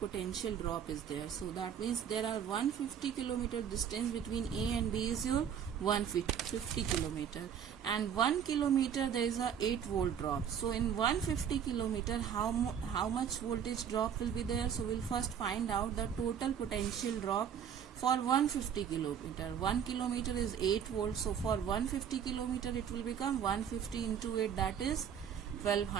drop is there. So that means there are 150 kilometer distance between A and B is your 150 kilometer, and 1 kilometer there is a 8 volt drop. So in 150 kilometer how much voltage drop will be there? So we'll first find out the total potential drop for 150 kilometer. 1 kilometer is 8 volts. So for 150 kilometer it will become 150 into 8, that is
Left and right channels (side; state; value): left; quieter; 8.3 dB